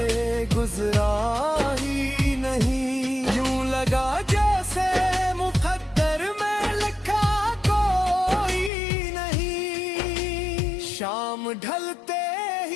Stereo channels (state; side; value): drops out; right; at 8.7 s